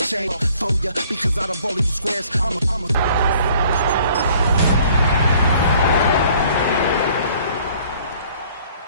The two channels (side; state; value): both; inverted; correlation -0.56